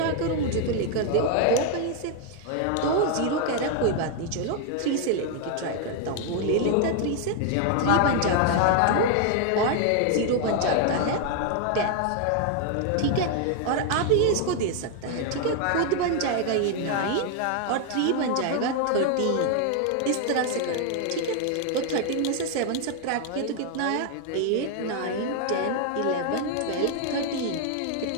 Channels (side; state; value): both; different; correlation 0.00